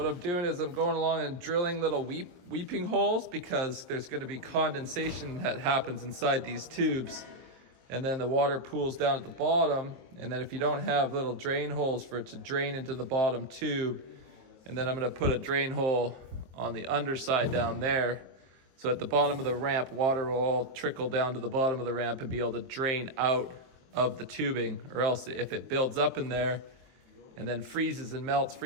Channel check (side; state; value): left; late; 23 ms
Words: I'm doing is I'm going along and drilling little weeping holes because there's going to be condensation that happens inside these tubes. And then the water pools down at the bottom. And then if you don't have little drain holes for it to drain into the bottom tube, and then I'm going to put a drain hole on the underside down there. So at the bottom of the ramp, water will all trickle down to the bottom of the ramp and be able to drain out of the tubing. Or else if it builds up in there and then freezes and melts,